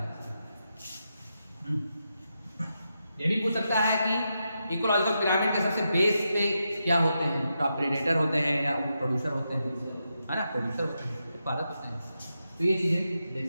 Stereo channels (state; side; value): inverted; both; correlation -0.86